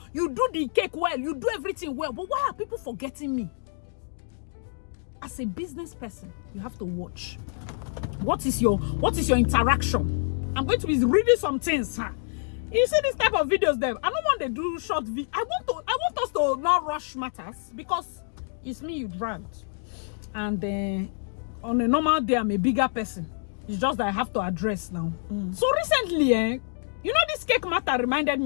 you do the cake well, you do everything well, but why are people forgetting me? As a business person, you have to watch. What is your interaction? I'm going to be reading some things, huh? You see this type of videos there. I don't want to do short video. I want us to not rush matters because it's me you dragged. And on a normal day, I'm a bigger person. It's just that I have to address now. So recently, you know, this cake matter reminded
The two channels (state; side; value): silent; right; digital silence